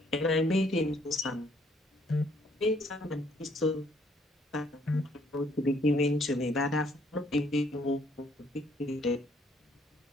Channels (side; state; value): both; normal; correlation 0.66